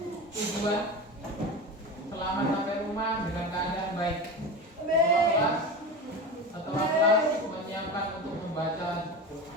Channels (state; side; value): normal; both; correlation 0.26